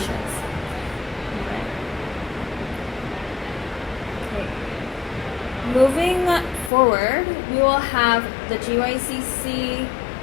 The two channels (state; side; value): drops out; right; at 6.7 s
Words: Okay. Moving forward, we will have the GYCC